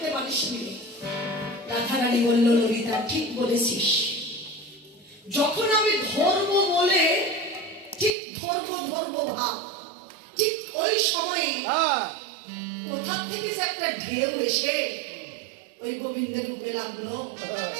পারিসনি। রাধারানী বলল, ললিতা ঠিক বলেছিস। যখন আমি ধর্ম বলে ঠিক ধর্ম ভাব, ঠিক ওই সময়ে কোথা থেকে যে একটা ঢেউ এসে ওই গোবিন্দের রূপে লাগলো,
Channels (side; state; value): left; drops out; at 8.1 s